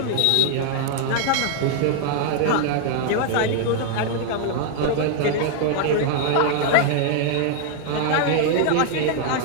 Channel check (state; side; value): different; both; correlation 0.00